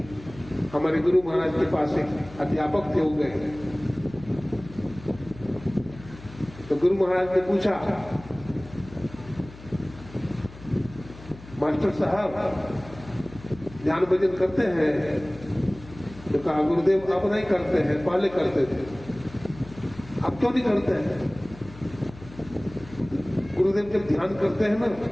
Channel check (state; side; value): noise; left; hum, 18 dB below the sound